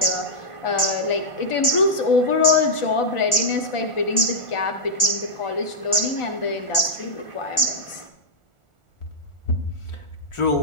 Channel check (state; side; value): late; right; 1.4 ms